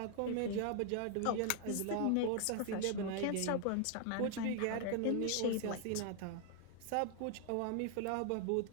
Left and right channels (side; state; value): both; different; correlation 0.00